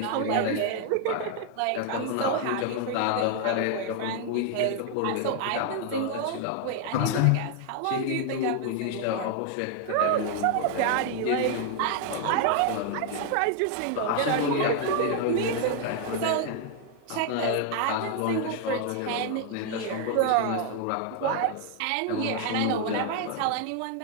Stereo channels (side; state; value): both; different; correlation 0.00